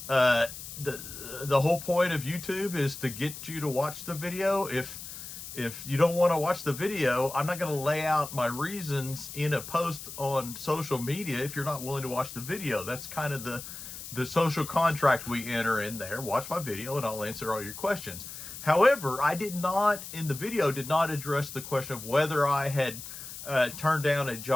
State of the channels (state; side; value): noise; left; hiss, 11 dB below the sound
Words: The whole point of YouTube is to get you to watch the video. If you don't want to watch the video, I'm not going to lay out my reasons in a post on social media if you're not willing to watch the video. That's kind of the social contract we enter in there. Watch my video and I'll answer all your questions. However, I did not address the question of whether I had turned down a